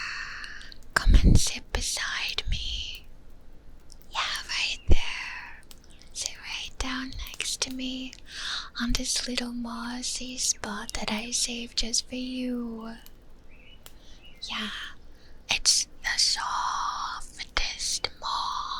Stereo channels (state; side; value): identical; both; correlation 1.00